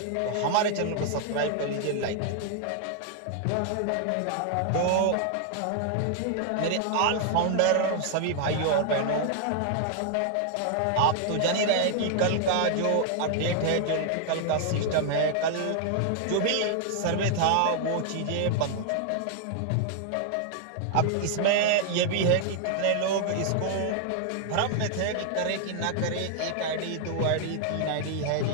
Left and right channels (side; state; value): both; different; correlation 0.00